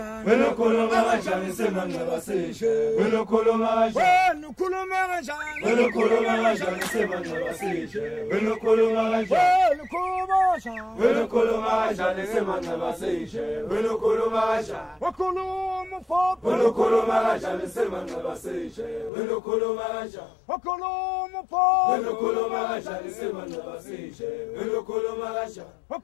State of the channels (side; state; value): right; drops out; at 19.1 s